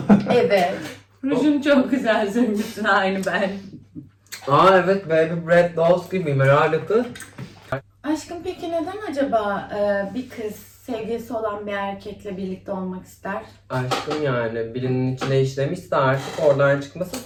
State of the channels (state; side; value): identical; both; correlation 1.00